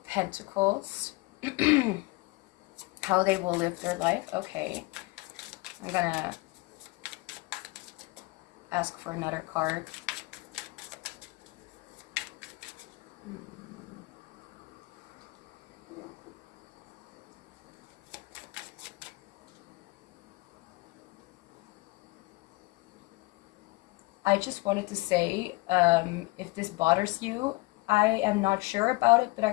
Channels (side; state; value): right; quieter; 24.6 dB